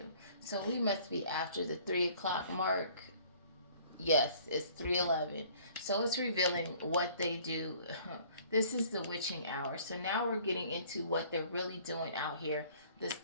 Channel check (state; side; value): inverted; both; correlation -0.55